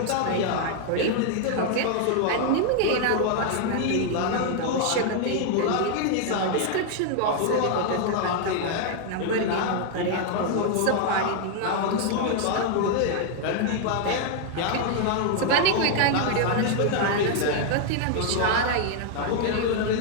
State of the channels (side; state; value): both; different; correlation 0.00